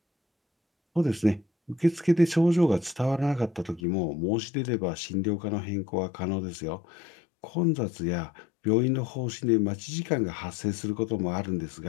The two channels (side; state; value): right; drops out; at 3.8 s